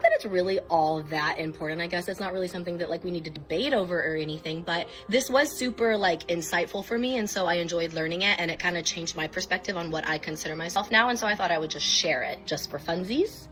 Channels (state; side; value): identical; both; correlation 1.00